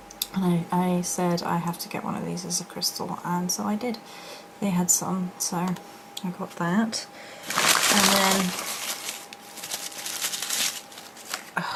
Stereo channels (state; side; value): identical; both; correlation 1.00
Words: and I said I have to get one of these as a crystal, and so I did. They had some, so I got that. And then